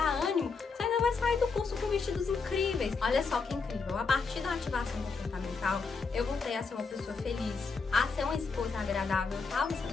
ânimo, você ainda vai sair do curso com vestidos incríveis. Olha só que incrível, a partir da ativação comportamental, eu voltei a ser uma pessoa feliz, a ser uma esposa agradável. Eu estava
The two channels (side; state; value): right; quieter; 4.8 dB